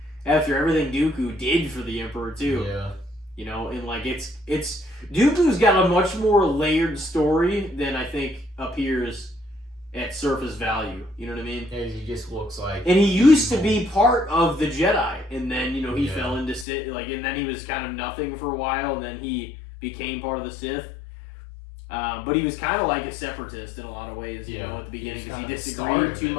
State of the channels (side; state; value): right; drops out; at 16.7 s